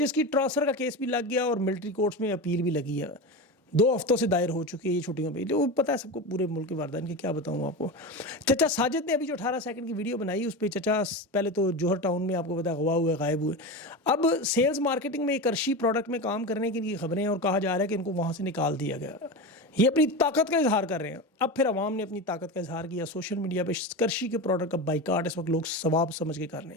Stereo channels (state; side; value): normal; both; correlation 0.22